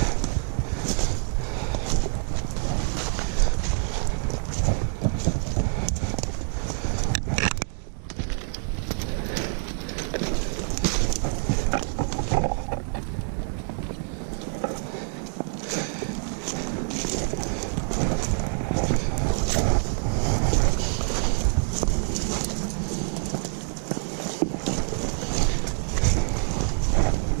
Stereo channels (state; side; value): silent; left; 61 dB below the other